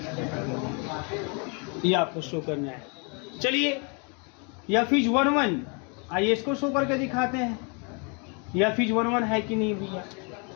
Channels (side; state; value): right; quieter; 34.8 dB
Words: ये आपको शो करना है। चलिए एफ इज 1 1, आइए इसको शो करके दिखाते हैं, एफ इज 1 1 है कि नहीं भैया,